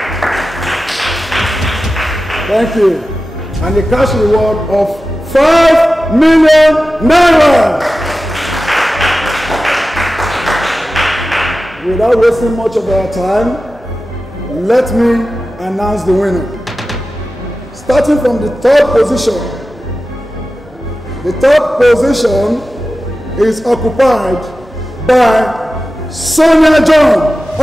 Thank you. And a cash reward of 5 million naira. Without wasting much of our time, let me announce the winner. Starting from the third position. The third position is occupied by Sonia John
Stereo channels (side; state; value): both; normal; correlation 0.94